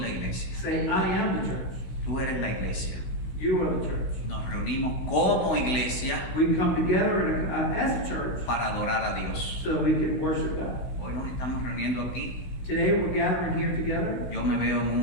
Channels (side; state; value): right; late; 16 ms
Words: iglesia. Say, I am the church. Tú eres la iglesia. You are the church. Nos reunimos como iglesia We come together as a church para adorar a Dios. so that we can worship God. Hoy nos estamos reuniendo aquí. Today we're gathering here together. Yo me veo